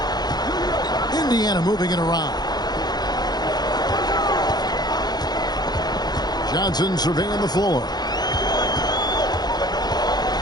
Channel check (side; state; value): right; late; 0.20 ms